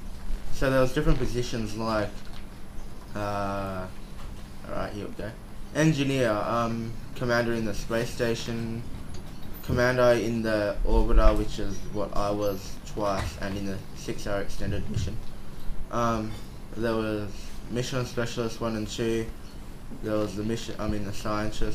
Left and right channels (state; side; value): identical; both; correlation 1.00